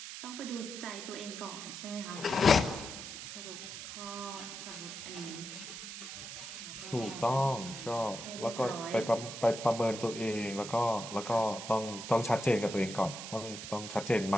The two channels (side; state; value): right; noise; hiss, 9 dB below the sound